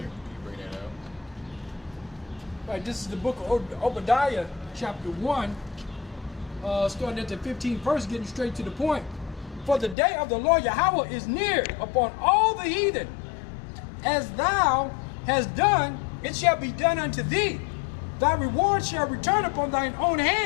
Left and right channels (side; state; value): right; drops out; at 10.0 s